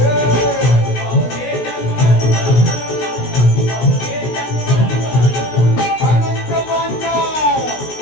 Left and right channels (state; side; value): late; right; 16 ms